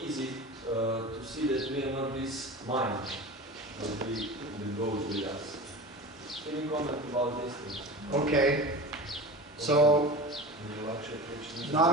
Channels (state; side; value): normal; both; correlation 0.32